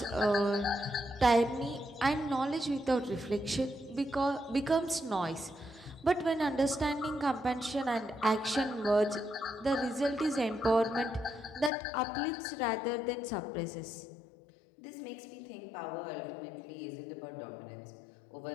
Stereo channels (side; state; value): right; drops out; at 11.7 s